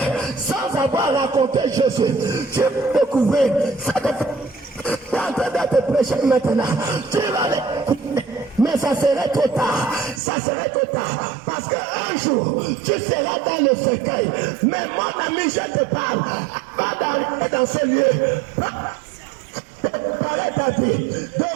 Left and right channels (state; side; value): drops out; left; at 10.2 s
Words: sans avoir raconté Jésus, tu vas découvrir. Tu es en train de te prêcher maintenant. Tu vas l'écouter. Mais ça serait trop tard. Ça serait trop tard. Parce qu'un jour, tu seras dans le cercueil. Mais mon ami, je te parle. Avant d'arriver dans ce lieu, préparer ta vie, de